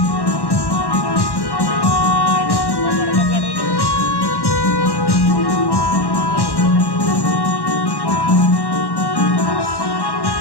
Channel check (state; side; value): late; right; 1.1 ms